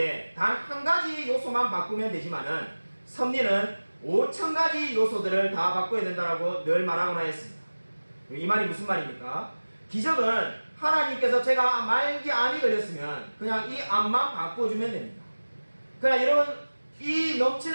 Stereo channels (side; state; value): both; inverted; correlation -1.00